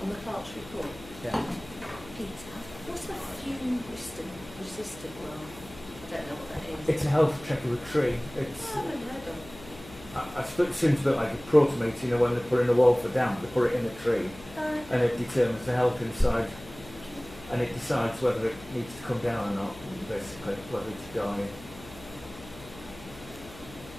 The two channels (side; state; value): left; noise; hum, 17 dB below the sound